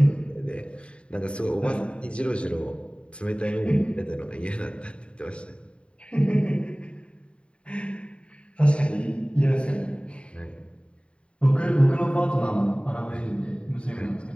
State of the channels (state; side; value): late; right; 0.057 ms